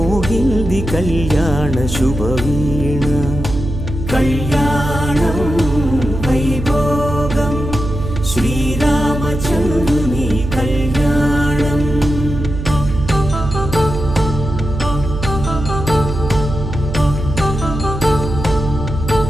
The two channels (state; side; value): noise; right; hum, 6 dB below the sound